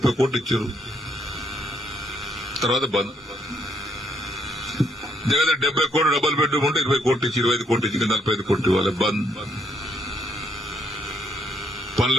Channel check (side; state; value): both; normal; correlation 0.72